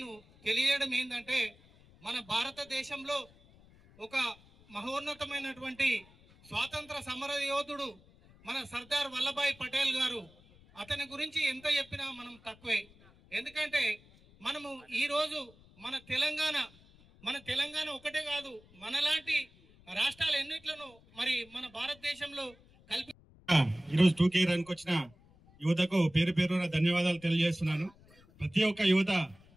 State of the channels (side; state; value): left; noise; rumble, 26 dB below the sound